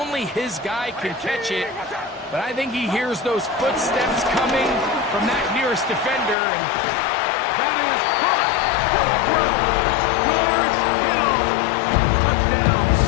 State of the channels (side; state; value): right; drops out; at 6.4 s